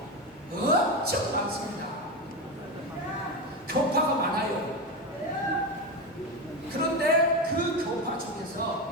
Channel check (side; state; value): both; normal; correlation 0.16